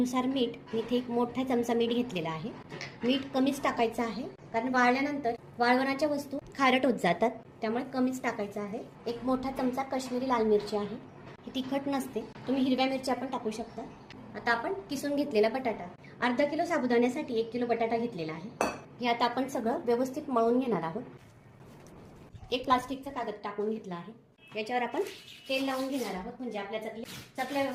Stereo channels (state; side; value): identical; both; correlation 1.00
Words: मीठ. मी इथे एक मोठा चमचा मीठ घेतलेला आहे. मीठ कमीच टाकायचं आहे, कारण वाळल्यानंतर वाळवणाच्या वस्तू खारट होत जातात, त्यामुळे कमीच टाकायचं आहे. एक मोठा चमचा काश्मीरी लाल मिरची आहे. ही तिखट नसते, तुम्ही हिरव्या मिरच्या पण टाकू शकता. आता आपण किसून घेतलेला बटाटा, अर्धा किलो साबुदाण्यासाठी 1 किलो बटाटा घेतलेला आहे. हे आता आपण सगळं व्यवस्थित मळून घेणार आहोत. एक प्लास्टिकचा कागद टाकून घेतला आहे. याच्यावर आपण तेल लावून घेणार आहोत, म्हणजे आपल्या चकल्या